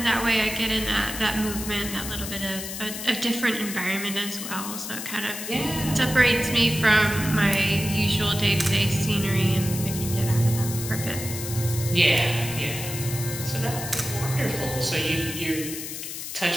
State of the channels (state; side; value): noise; left; hiss, 7 dB below the sound